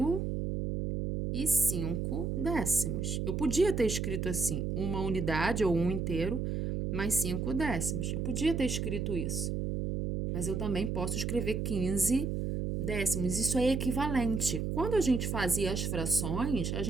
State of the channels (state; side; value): noise; right; hum, 1 dB below the sound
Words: e 5 décimos. Eu podia ter escrito assim, uma unidade ou 1 inteiro mais 5 décimos. Eu podia ter escrito isso. Mas eu também posso escrever 15 décimos. Isso é equivalente. Quando a gente fazia as frações, a